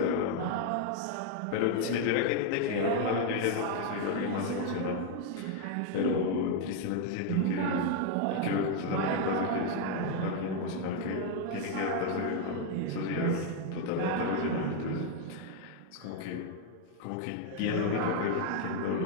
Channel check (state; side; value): different; both; correlation 0.00